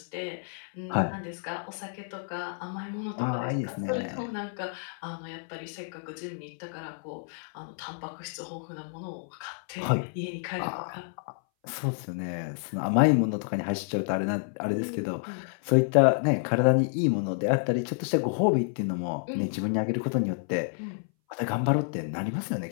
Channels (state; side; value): silent; right; 58 dB below the other